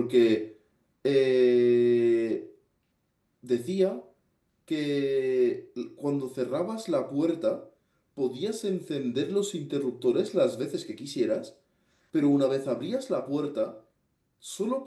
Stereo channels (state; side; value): identical; both; correlation 1.00